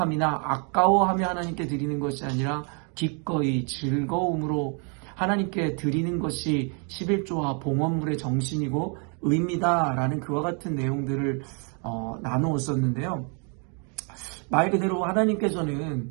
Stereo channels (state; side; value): quieter; left; 38.1 dB